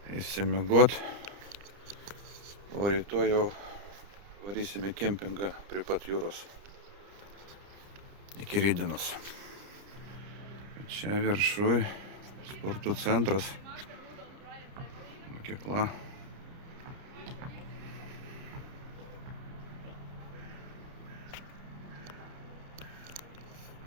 eisim miegot, o rytoj jau varysime kempingą prie pat jūros. Iki rytdienos. Čia viršuj sporto centras, mokykla.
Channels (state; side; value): late; left; 30 ms